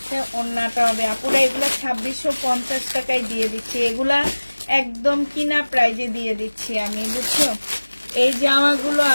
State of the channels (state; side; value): inverted; both; correlation -1.00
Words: ওড়নাটা হবে। আপুরা এগুলা 2650 টাকায় দিয়ে দিচ্ছি, এগুলা একদম কিনা প্রাইজে দিয়ে দিচ্ছি আমি, বুঝছো। এই জামাগুলো